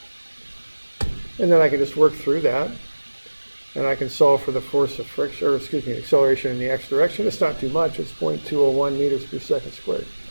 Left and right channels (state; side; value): inverted; both; correlation -1.00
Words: And then I can just work through that. And I can solve for the force of friction, or excuse me, acceleration in the x direction. It's not too much. It's 0.201 meters per second squared.